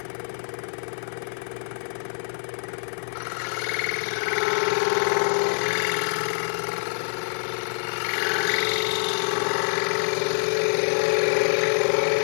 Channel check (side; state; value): right; silent; digital silence